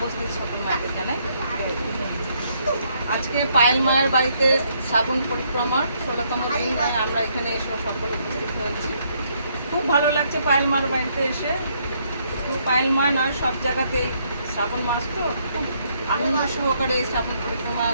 সকল মায়েদের জানাই জয় গুরু। আজকে পায়েল মায়ের বাড়িতে শ্রাবণ পরিক্রমার 16তম দিন আমরা এখানে এসে সকলে উপস্থিত হয়েছি। খুব ভালো লাগছে পায়েল মায়ের বাড়িতে এসে। তো পায়েল মা নয়, সব জায়গাতেই শ্রাবণ মাস তো খুব আনন্দ সহকারে এই শ্রাবণ পরিক্রমা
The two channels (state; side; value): inverted; both; correlation -0.71